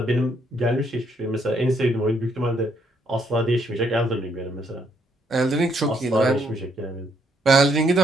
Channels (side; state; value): both; normal; correlation 0.72